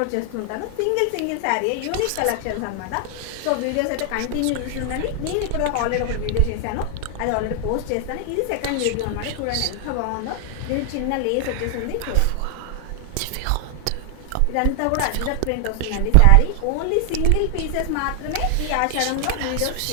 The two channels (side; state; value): both; different; correlation 0.00